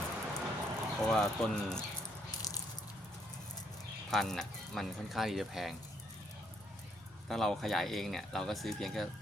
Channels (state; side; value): normal; both; correlation 0.71